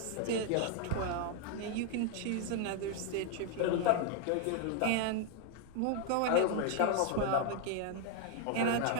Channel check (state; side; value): different; both; correlation 0.00